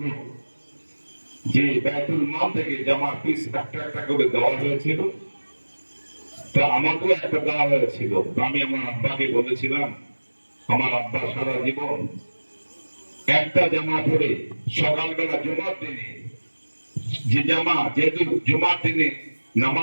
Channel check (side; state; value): both; inverted; correlation -1.00